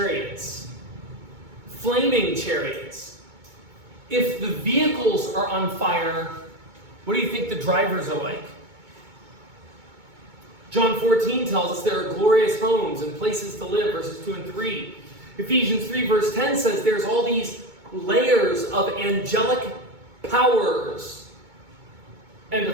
Flaming chariots. If the vehicles are on fire, what do you think the drivers are like? John 14 tells us there are glorious homes and places to live, verses 2 and 3. Ephesians 3 verse 10 says there's all these layers of angelic powers and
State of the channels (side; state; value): left; late; 2.2 ms